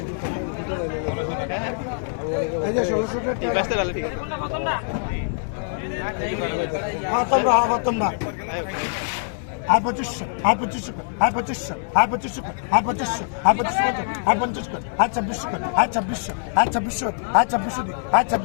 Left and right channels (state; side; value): silent; right; digital silence